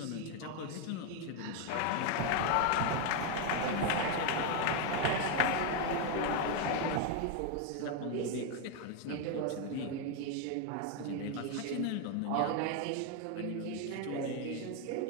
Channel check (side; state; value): both; different; correlation 0.01